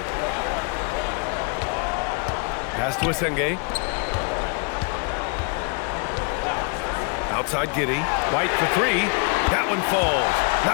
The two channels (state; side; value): quieter; right; 35.3 dB